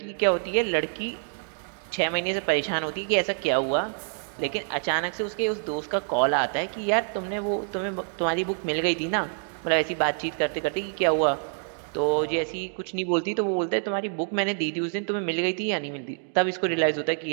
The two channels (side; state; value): left; silent; 60 dB below the other